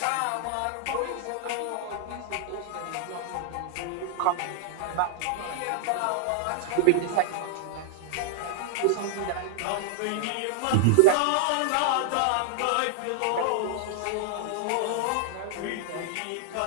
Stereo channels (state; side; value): different; both; correlation 0.00